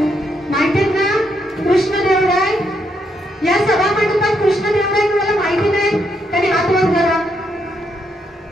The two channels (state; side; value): normal; both; correlation 0.77